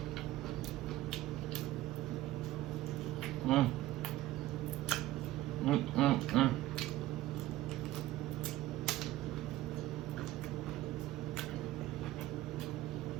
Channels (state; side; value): quieter; left; 15.6 dB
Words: Mm. Mm, mm, mm.